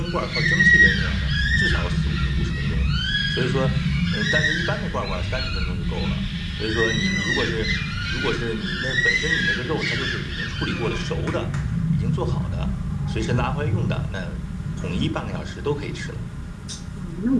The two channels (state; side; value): identical; both; correlation 1.00